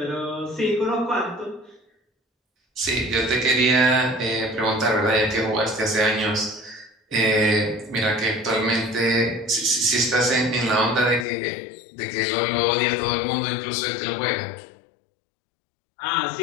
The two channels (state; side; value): drops out; right; at 11.2 s